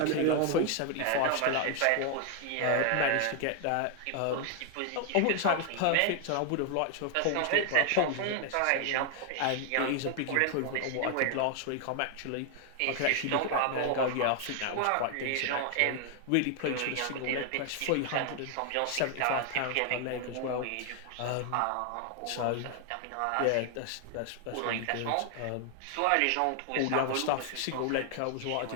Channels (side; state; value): both; different; correlation 0.00